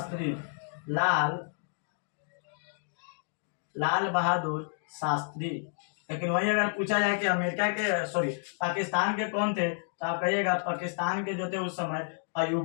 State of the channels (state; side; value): silent; right; digital silence